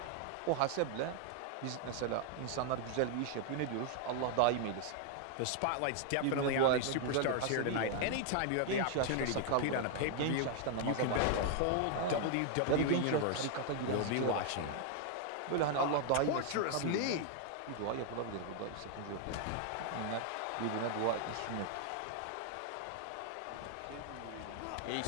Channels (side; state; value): both; different; correlation 0.00